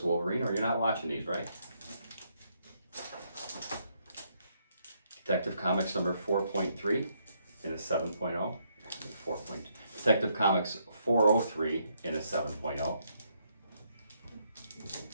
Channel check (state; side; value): inverted; both; correlation -0.74